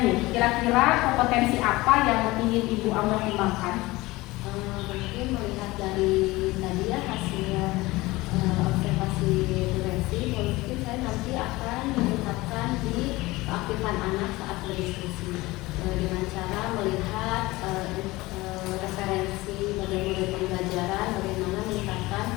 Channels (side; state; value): right; quieter; 20.4 dB